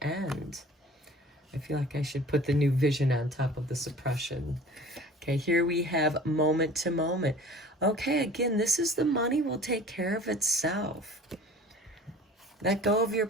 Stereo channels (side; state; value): both; normal; correlation 0.45